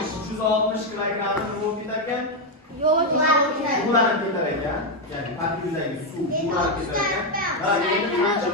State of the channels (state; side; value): normal; both; correlation 0.03